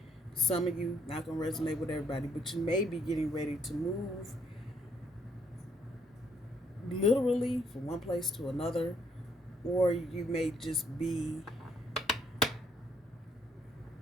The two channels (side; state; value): both; normal; correlation 0.69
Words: some of you, not going to resonate with everybody, but you may be getting ready to move literally from one place to another, or you may just be